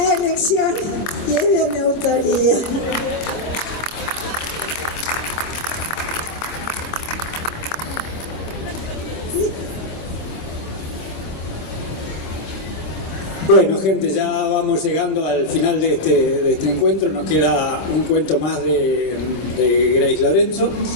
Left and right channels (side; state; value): right; late; 26 ms